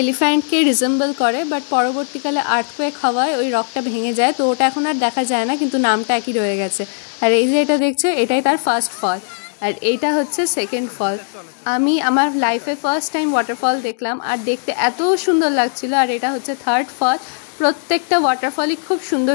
রিজেম্বল করে, বাট পরবর্তীকালে আর্থকোয়েক হওয়ায় ওই রকটা ভেঙে যায়। তো ওটা এখন আর দেখা যায় না, কিন্তু নামটা একই রয়ে গেছে। আর এই যে এটা দেখছো, এটাই তার ফার্স্ট ফল, আর এইটা হচ্ছে সেকেন্ড ফল। আমি আমার লাইফে ফার্স্ট টাইম ওয়াটারফল দেখলাম, আর দেখতে এত সুন্দর লাগছিল। আর এটা হচ্ছে থার্ড ফল। প্রত্যেকটা ওয়াটারফলই খুব সুন্দর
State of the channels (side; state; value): right; silent; 67 dB below the other